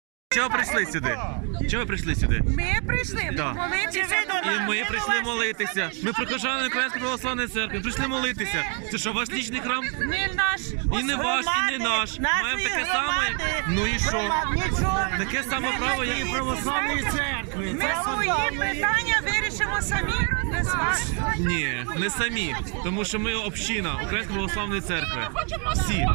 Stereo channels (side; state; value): left; quieter; 37.1 dB